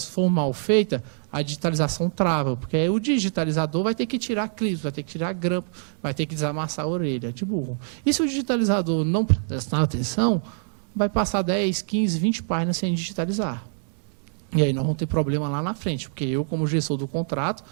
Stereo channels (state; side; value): silent; left; digital silence